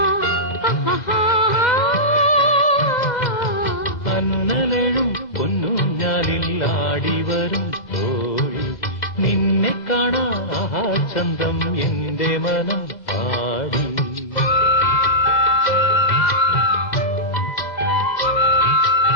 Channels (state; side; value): late; right; 2.0 ms